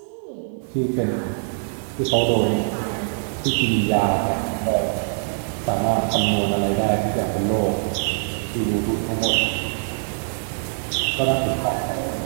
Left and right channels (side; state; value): left; silent; digital silence